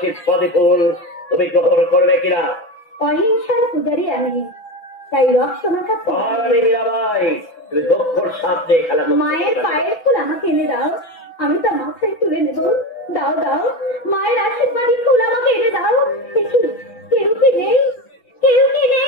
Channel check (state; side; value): late; right; 6.0 ms